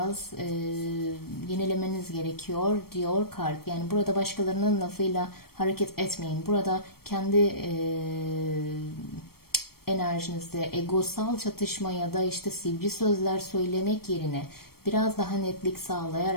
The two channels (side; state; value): right; late; 0.94 ms